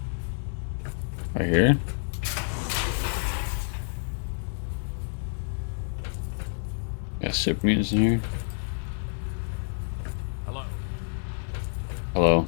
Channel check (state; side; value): silent; right; digital silence